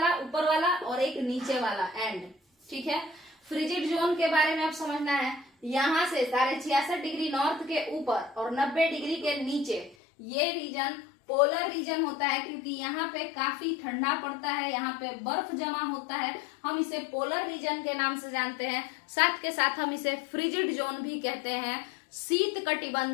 ऊपर वाला और एक नीचे वाला एंड। ठीक है, फ्रिजिड जोन के बारे में आप समझना है, यहाँ से 66.5 डिग्री नॉर्थ के ऊपर और 90 डिग्री के नीचे ये रीजन पोलर रीजन होता है, क्योंकि यहाँ पे काफी ठंडा पड़ता है, यहाँ पे बर्फ जमा होता है। हम इसे पोलर रीजन के नाम से जानते हैं। साथ के साथ हम इसे फ्रिजिड जोन भी कहते हैं, शीत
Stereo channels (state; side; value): drops out; right; at 10.0 s